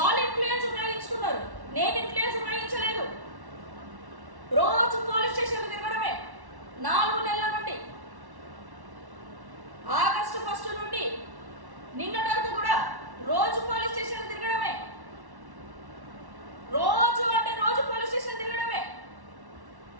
ఇన్ఫ్లుయెన్స్ ఉపయోగించుకున్నారు, నేను ఇన్ఫ్లుయెన్స్ ఉపయోగించలేదు. రోజు పోలీస్ స్టేషన్ తిరగడమే 4 నెలల నుండి, ఆగస్టు 1 నుండి నిన్నటి వరకు కూడా రోజు పోలీస్ స్టేషన్ తిరగడమే. రోజు పోలీస్ స్టేషన్ తిరగడమే.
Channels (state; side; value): late; left; 1.1 ms